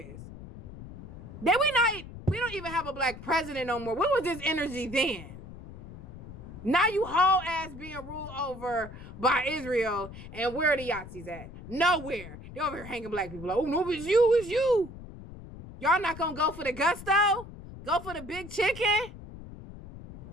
We don't even have a black president no more. What was this energy then? Now you whole ass being ruled over by Israel, and where are the Yahtzees at? Nowhere. They over here hanging black people. Like, oh no, it's you. Y'all not gonna go for the gusto? Go for the big chicken?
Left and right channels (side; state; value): left; noise; rumble, 14 dB below the sound